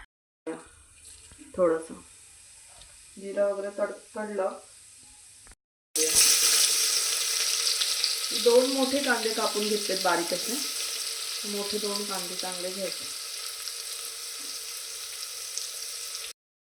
थोडंसं जिरं वगैरे तडतडलं, 2 मोठे कांदे कापून घेतलेत बारीक असे. मोठे 2 कांदे चांगले घ्यायचा.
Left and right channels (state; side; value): identical; both; correlation 1.00